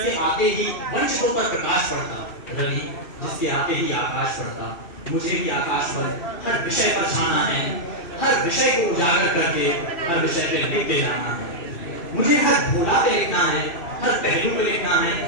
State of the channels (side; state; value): right; late; 2.6 ms